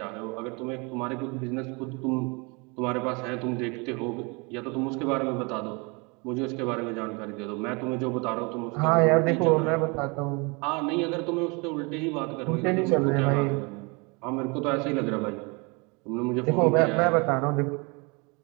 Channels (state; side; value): quieter; left; 29.8 dB